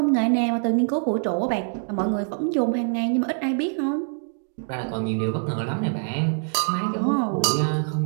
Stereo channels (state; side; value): silent; left; 58 dB below the other